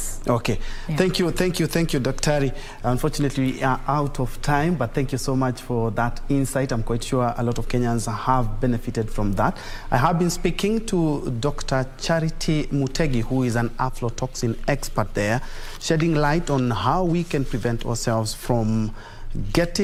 Okay, thank you, Dr. Unfortunately, we are out of time, but thank you so much for that insight. I'm quite sure a lot of Kenyans have benefited from that. I have been speaking to Dr. Charity Mutegi, who is an aflatoxin expert there, shedding light on how we can prevent ourselves from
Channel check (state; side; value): identical; both; correlation 1.00